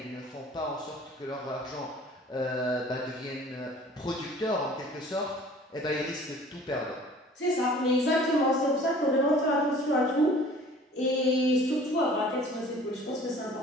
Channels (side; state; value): both; normal; correlation 0.49